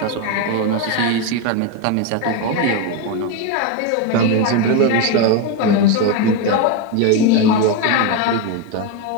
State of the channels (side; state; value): both; different; correlation 0.03